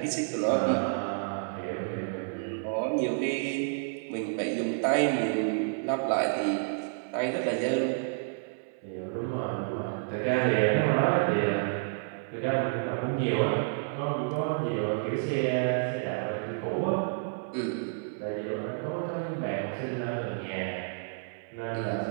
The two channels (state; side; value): silent; left; 58 dB below the other